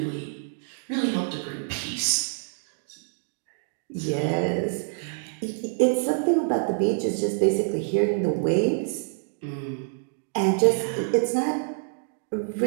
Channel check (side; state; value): left; silent; digital silence